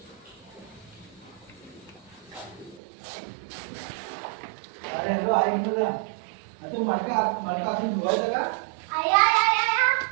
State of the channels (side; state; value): left; drops out; at 2.8 s